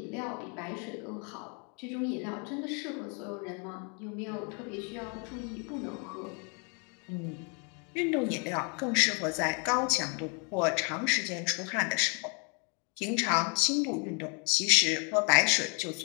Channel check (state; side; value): quieter; right; 36.4 dB